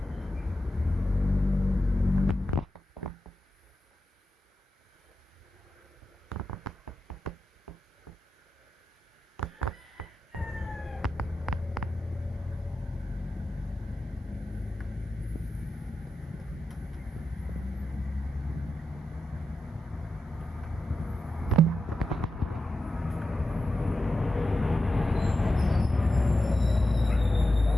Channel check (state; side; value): normal; both; correlation 0.90